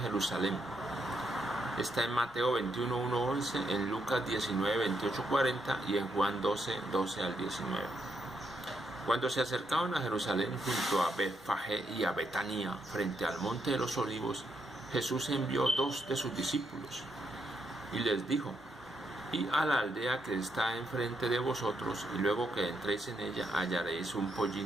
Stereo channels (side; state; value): both; normal; correlation 0.78